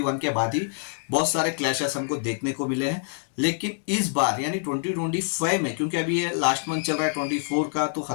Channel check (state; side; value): silent; right; 61 dB below the other